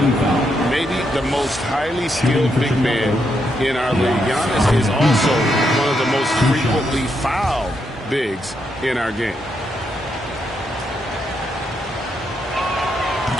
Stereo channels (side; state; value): both; normal; correlation 0.80